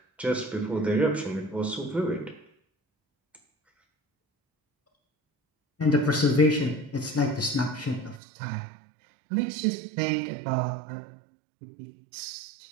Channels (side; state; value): left; drops out; at 8.2 s